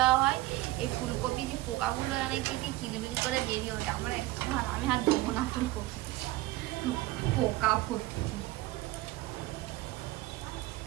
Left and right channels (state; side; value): quieter; left; 18.1 dB